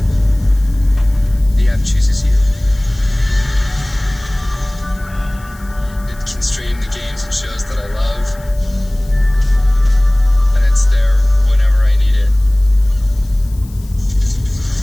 The app chooses you. It can stream the games and shows that I love. And it's there whenever I need it.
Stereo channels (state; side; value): noise; left; hiss, 24 dB below the sound